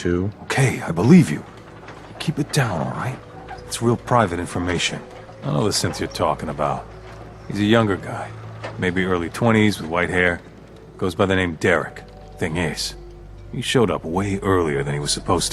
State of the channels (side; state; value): both; identical; correlation 1.00